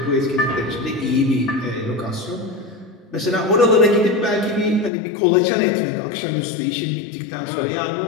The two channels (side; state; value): right; drops out; at 4.9 s